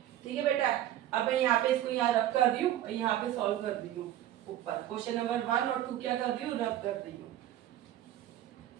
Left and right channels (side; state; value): left; quieter; 12.5 dB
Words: ठीक है बेटा, अब मैं यहाँ पे इसको यहाँ रब कर रही हूँ और यहाँ पे सॉल्व कर रही हूँ, ऊपर क्वेश्चन नंबर 1 और 2 क्या कर रही हूँ, रब कर रही हूँ।